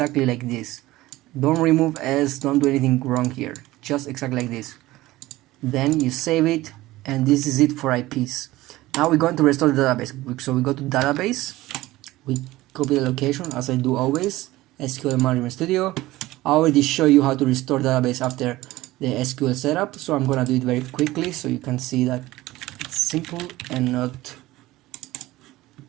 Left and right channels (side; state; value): left; quieter; 17.7 dB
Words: like this. Don't remove S, don't do anything wrong here, just exactly like this. Then you save it, and this is it for IPs. Now we're going to restore the database. So we go to database, we copy the location as I do always, SQL Management Studio. I already show you how to restore database after the SQL setup, so I'm gonna do it very quickly so you can see that it's simple and